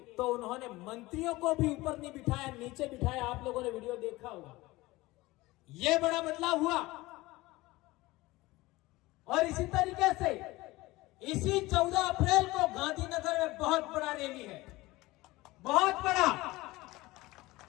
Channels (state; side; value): quieter; right; 19.9 dB